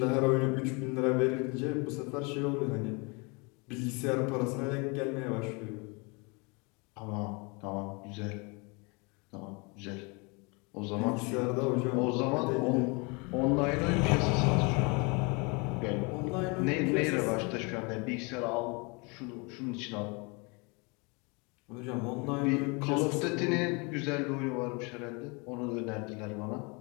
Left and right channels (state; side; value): quieter; right; 30.1 dB